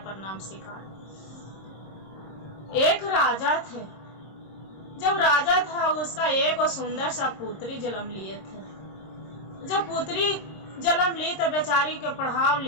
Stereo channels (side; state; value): right; late; 26 ms